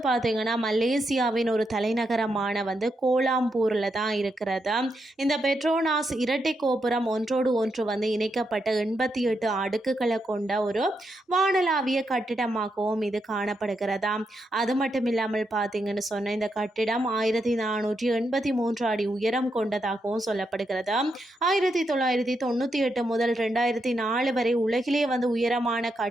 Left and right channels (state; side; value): normal; both; correlation 0.82